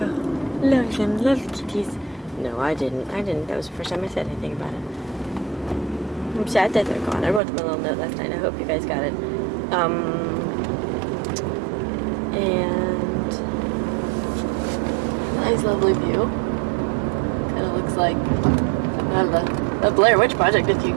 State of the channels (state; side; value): drops out; left; at 7.4 s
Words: Love them. Love kitties. No, I didn't. That was the first time I said anything about it. I'm sad that they're gone. I wrote them a little note last night. I hope you guys got it. And Nice, lovely view. Kind of looks like something out of the Blair Witch Project if you